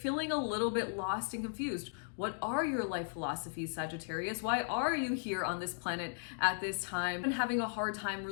a little bit lost and confused. What are your life philosophies, Sagittarius? Why are you here on this planet at this time? And having a hard time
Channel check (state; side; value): silent; right; digital silence